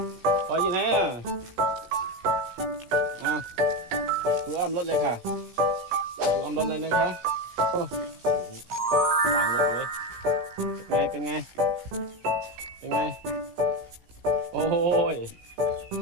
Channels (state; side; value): late; left; 17 ms